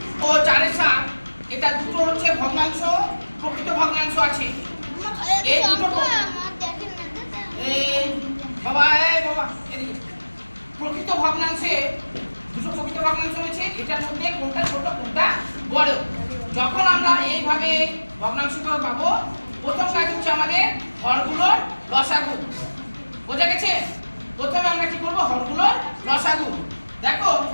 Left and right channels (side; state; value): both; inverted; correlation -1.00